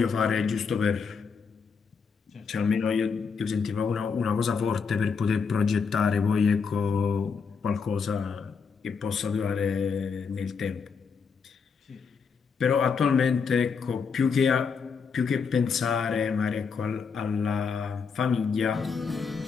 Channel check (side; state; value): right; quieter; 5.7 dB